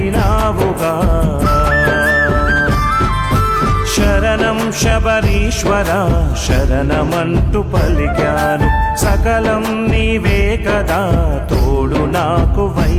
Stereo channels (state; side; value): identical; both; correlation 1.00